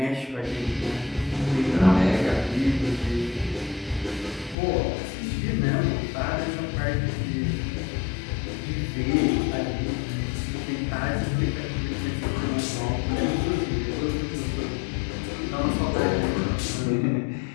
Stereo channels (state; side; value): drops out; right; at 4.5 s